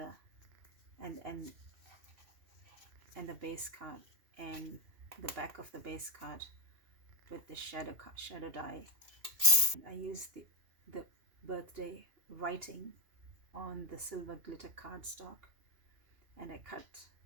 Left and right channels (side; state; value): left; late; 2.7 ms